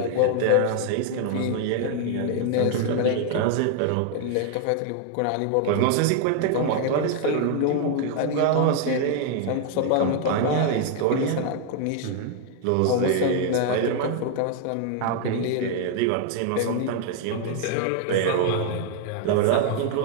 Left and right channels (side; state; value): both; different; correlation 0.00